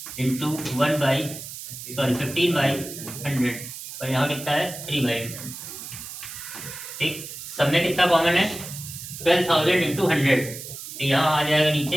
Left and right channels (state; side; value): noise; right; hiss, 11 dB below the sound